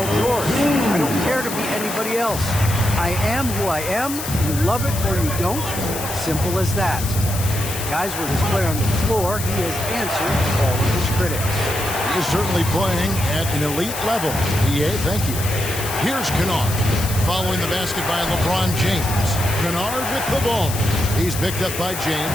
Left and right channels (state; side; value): noise; left; hiss, 7 dB below the sound